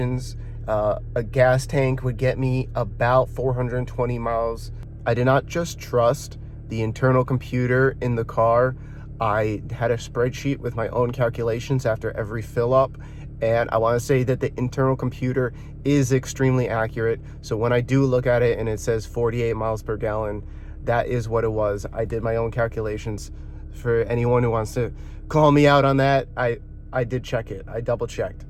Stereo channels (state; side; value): identical; both; correlation 1.00